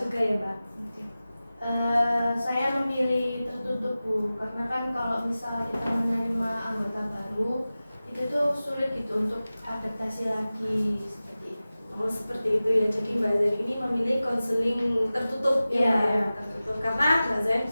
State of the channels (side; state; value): both; inverted; correlation -0.96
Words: ya, Mbak. Saya memilih tertutup, Bu, karena kan kalau misal kita menerima anggota baru itu tuh sulit gitu untuk adaptasi lagi seperti itu. Oh, seperti itu ya. Jadi Mbak Zain ini memilih konseling tertutup ya, Iya. Mbak, ya, tertutup karena Mbak Zain